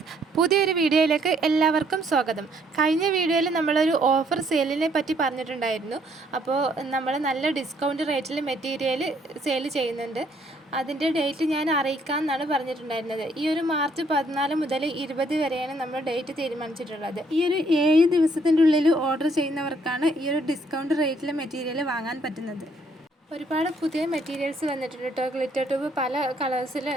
പുതിയൊരു വീഡിയോയിലേക്ക് എല്ലാവർക്കും സ്വാഗതം. കഴിഞ്ഞ വീഡിയോയിൽ നമ്മളൊരു ഓഫർ സെയിലിനെ പറ്റി പറഞ്ഞിട്ടുണ്ടായിരുന്നു. അപ്പോൾ നമ്മൾ നല്ല ഡിസ്കൗണ്ട് റേറ്റിൽ മെറ്റീരിയൽ സെയിൽ ചെയ്യുന്നുണ്ട്. അതിൻ്റെ ഡേറ്റ് ഞാൻ അറിയിക്കാമെന്നാണ് പറഞ്ഞിട്ടുണ്ടായിരുന്നത്. ഈ ഒരു മാർച്ച് 14 മുതൽ 20 വരെയാണ് നമ്മൾ ഡേറ്റ് തീരുമാനിച്ചിട്ടുള്ളത്. ഈ ഒരു 7 ദിവസത്തിൻ്റെ ഉള്ളിൽ ഓർഡർ ചെയ്യുന്നവർക്കാണ് ഈ ഒരു ഡിസ്കൗണ്ട് റേറ്റിൽ മെറ്റീരിയൽ വാങ്ങാൻ പറ്റുന്നത്. ഒരുപാട് പുതിയ മെറ്റീരിയൽസ് വന്നിട്ടുണ്ട് കേട്ടോ. ഗ്ലിറ്റർ ട്യൂബ് പല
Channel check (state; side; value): normal; both; correlation 0.67